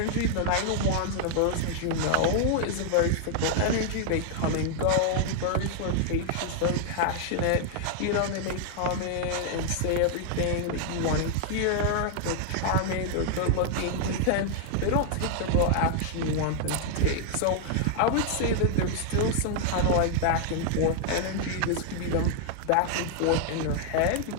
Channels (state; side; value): different; both; correlation 0.00